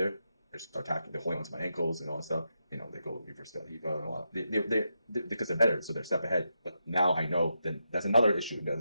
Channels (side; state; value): both; inverted; correlation -0.85